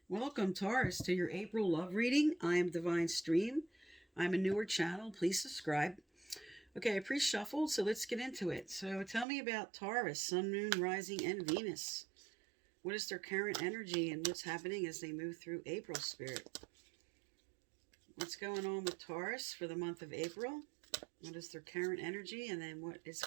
Welcome, Taurus, to your April love reading. I am Divine Stream. I'm a newer channel. Please subscribe. Okay, I pre-shuffled, so let's get into it. So tell me about Taurus, Sun, Moon, Rising, and Venus. What is their current energy and what's happening as they move through April, Spirit? What's going on with Taurus for the month of April? What is their current energy and then what is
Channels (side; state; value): left; drops out; at 9.2 s